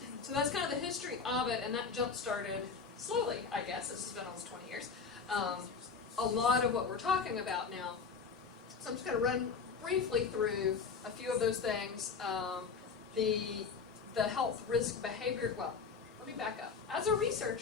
that's kind of the history of it, and that jump started slowly, I guess. This has been almost 20 years. A lot of what we're talking about now. So I'm just going to run briefly through a few of those things. The health risk behavior. Well, let me back up. As a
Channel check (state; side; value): quieter; right; 5.3 dB